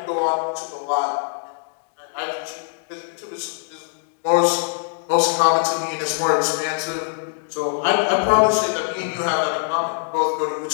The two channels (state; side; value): silent; right; digital silence